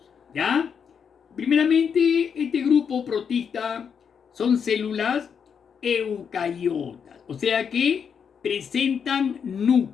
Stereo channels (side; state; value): right; quieter; 6.9 dB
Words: ¿ya? Primeramente, este grupo protista son células eucariotas, o sea que presentan